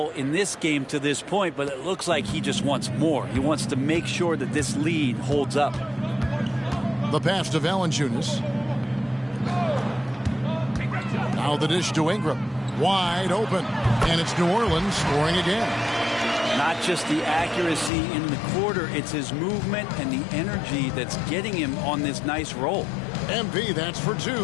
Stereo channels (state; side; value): drops out; right; at 17.9 s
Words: in this game to this point, but it looks like he just wants more. He wants to make sure that this lead holds up. The pass to Valanciunas. Now the dish to Ingram. Wide open. And it's New Orleans scoring again. Not just the accuracy in the quarter, it's his movement and the energy that's getting him on this nice roll. MP, that's for